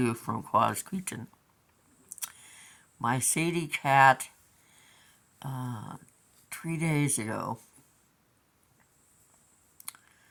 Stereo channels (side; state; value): both; identical; correlation 1.00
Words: from Quasqueton. My Sadie cat, uh, 3 days ago,